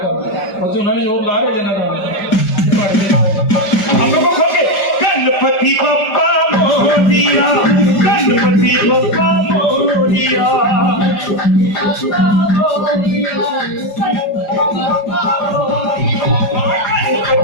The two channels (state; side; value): late; right; 5.1 ms